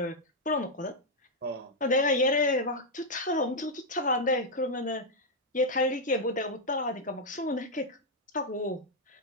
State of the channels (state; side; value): normal; both; correlation -0.01